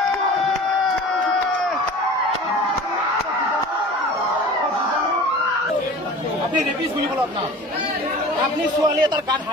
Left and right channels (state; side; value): normal; both; correlation 0.40